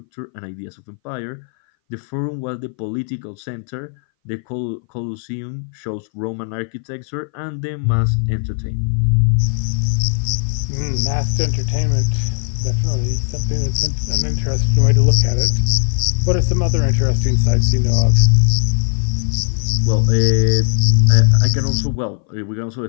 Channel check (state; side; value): silent; right; 61 dB below the other